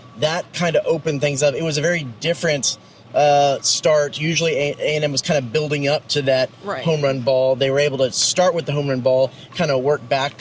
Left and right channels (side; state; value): both; identical; correlation 1.00